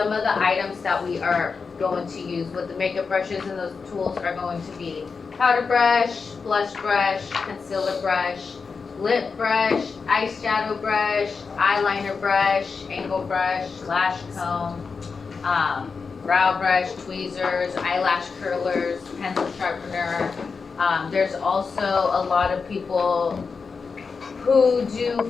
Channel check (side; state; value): right; quieter; 5.0 dB